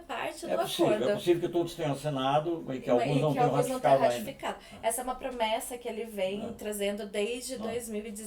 do possível, acordo. É possível que todos tenham assinado e que alguns não tenham ratificado ainda. Essa é uma promessa que ele vem trazendo desde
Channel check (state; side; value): identical; both; correlation 1.00